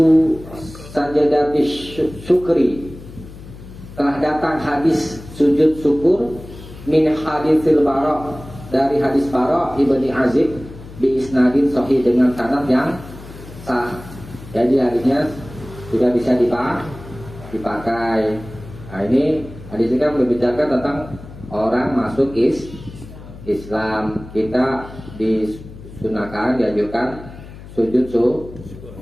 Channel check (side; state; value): left; noise; hum, 16 dB below the sound